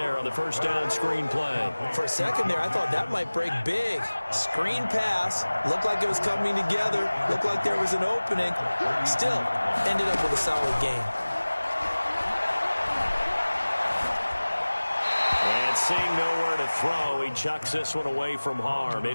on the first down screen play. For a second there, I thought that might break big. Screen pass. Looked like it was coming together. Looked like there was an opening. Still, ended up with a solid game. And seeing nowhere to throw, he chucks this one away from harm.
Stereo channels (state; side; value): inverted; both; correlation -1.00